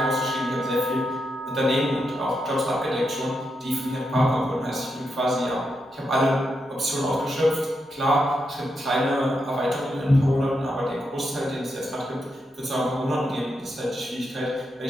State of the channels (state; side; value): normal; both; correlation 0.84